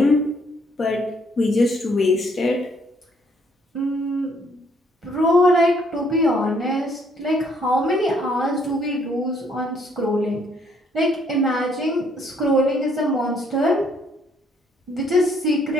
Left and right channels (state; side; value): normal; both; correlation 0.67